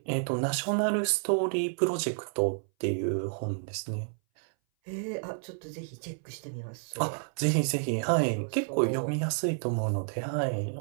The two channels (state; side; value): silent; left; 58 dB below the other